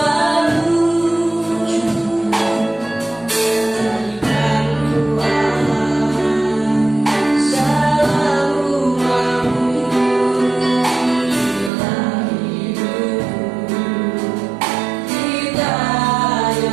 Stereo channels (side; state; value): left; drops out; at 11.7 s